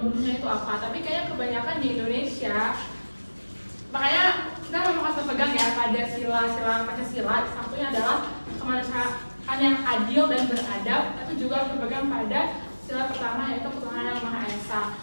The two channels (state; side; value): inverted; both; correlation -1.00